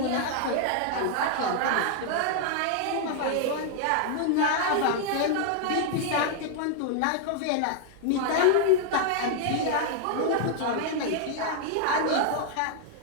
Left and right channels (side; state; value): both; different; correlation -0.01